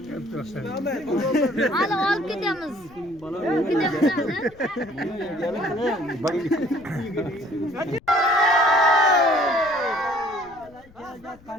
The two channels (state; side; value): noise; left; rumble, 25 dB below the sound